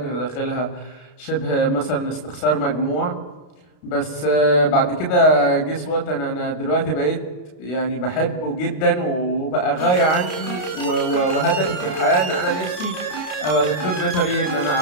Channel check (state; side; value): late; right; 33 ms